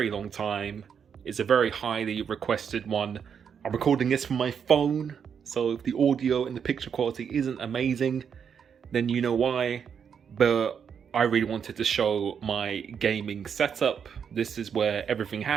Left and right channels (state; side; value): quieter; left; 7.3 dB